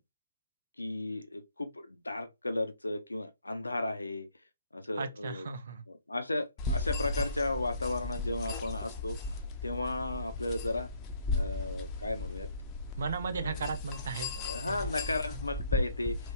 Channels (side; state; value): both; inverted; correlation -0.64